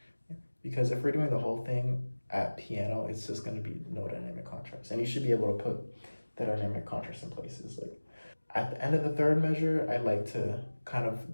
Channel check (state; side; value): inverted; both; correlation -1.00